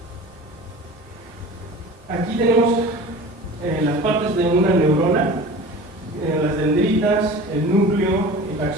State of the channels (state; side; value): normal; both; correlation 0.39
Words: Aquí tenemos las partes de una neurona, las dendritas, el núcleo, el